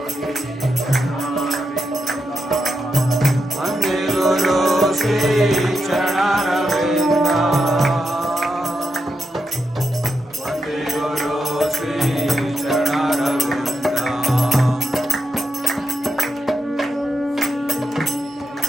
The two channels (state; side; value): normal; both; correlation 0.86